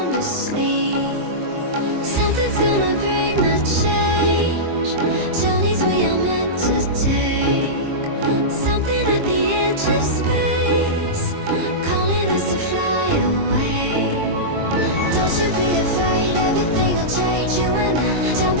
asleep, something's gonna bring the change. Journeys we are meant to take. Something at the edge of space, calling us to fly away. Don't you be afraid, everything will change. You and I,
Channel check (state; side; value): late; left; 23 ms